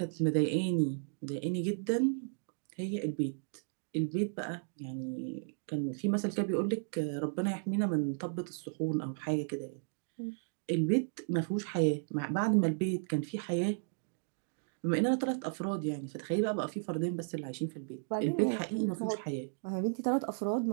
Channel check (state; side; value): silent; left; digital silence